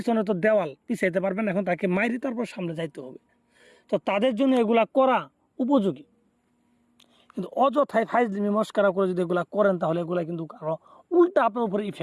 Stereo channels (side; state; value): both; identical; correlation 1.00